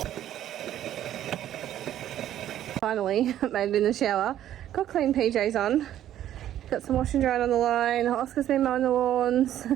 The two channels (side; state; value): left; quieter; 11.8 dB